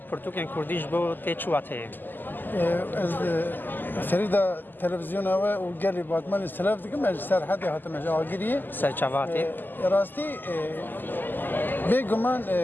پرتوکن کردیش بو تیچواته. از سریدا تلویزیون و گلی باتمان استلاف دیگه مج سرحدی هاتم جاگیری سرچواته. راستی بگمان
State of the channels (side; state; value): right; late; 0.090 ms